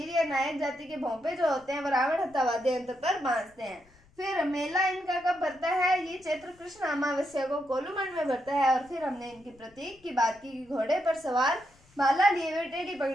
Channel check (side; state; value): left; noise; rumble, 29 dB below the sound